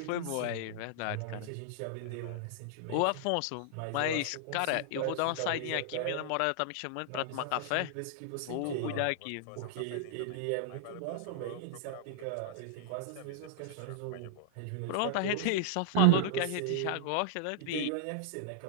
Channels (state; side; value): different; both; correlation -0.01